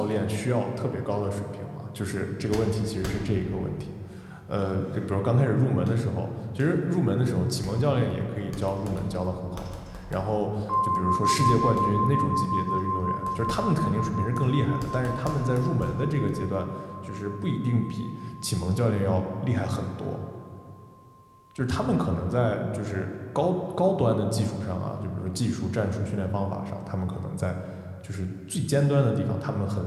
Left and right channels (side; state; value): both; identical; correlation 1.00